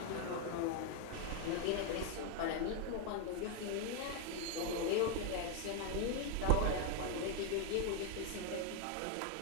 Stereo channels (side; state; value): both; different; correlation 0.01